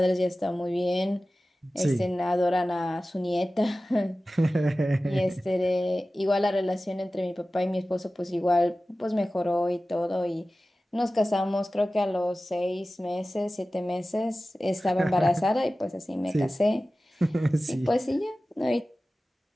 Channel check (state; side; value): normal; both; correlation 0.96